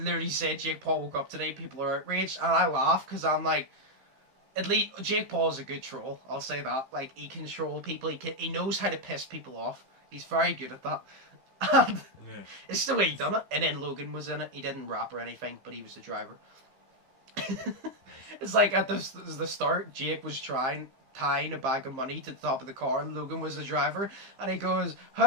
said, "Jake Paul woke up today, people are outraged." And I laugh because I'm like, at least Jake Paul is a good troll. I'll say that. Like, he can troll people. He knows how to piss people off. He's very good at that. And it's the way he done it. And then Logan was in it. He didn't rap or anything, but he was the driver. It's like at the start, Jake was trying tying a bag of money to the top of the car, and Logan was the driver, and he goes,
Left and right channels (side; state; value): left; late; 15 ms